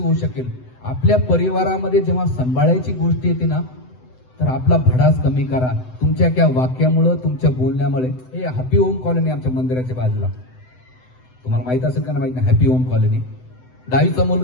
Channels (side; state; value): right; late; 7.9 ms